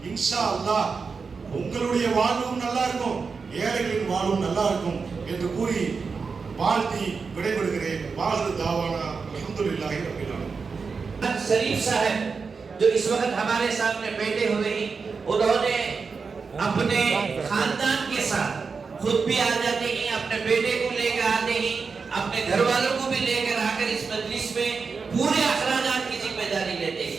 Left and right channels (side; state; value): left; quieter; 5.0 dB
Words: இன்ஷா அல்லாஹ் உங்களுடைய வாழ்வும் நல்லா இருக்கும், ஏழைகளின் வாழ்வும் நல்லா இருக்கும் என்று கூறி வாழ்த்தி விடைபெறுகிறேன். வாஹிரு தாவானா அல்ஹம்துலில்லாஹி ரப்பில் ஆலமீன்। शरीफ साहब जो इस वक्त हमारे सामने बैठे हुए हैं, उन्होंने अपने खानदान के साथ खुद भी आ जाते हैं, अपने बेटे को लेकर आते हैं, अपने घर वालों को भी लेकर आकर इस मजलिस में पूरे अखराजात की जिम्मेदारी लेते